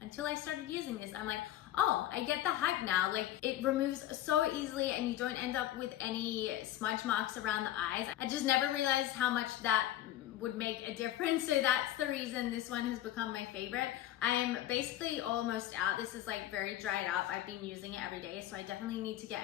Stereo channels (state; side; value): quieter; right; 13.4 dB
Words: I started using this. I'm like, oh, I get the hype now. Like, it removes so easily and you don't end up with any smudge marks around the eyes. I just never realized how much that would make a difference. So that's the reason this one has become my favorite. I am basically almost out. This is like very dried up. I've been using it every day, so I definitely need to